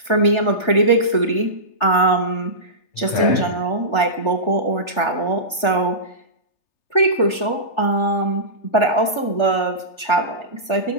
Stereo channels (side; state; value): right; late; 3.3 ms